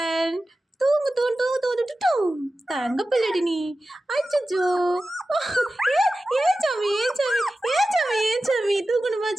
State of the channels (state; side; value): normal; both; correlation 0.94